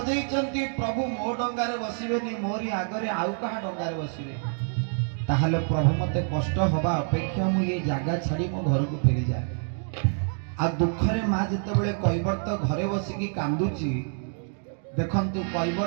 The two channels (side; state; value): left; silent; 59 dB below the other